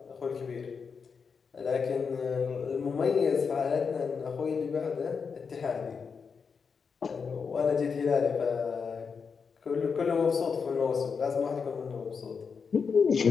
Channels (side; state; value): right; quieter; 5.7 dB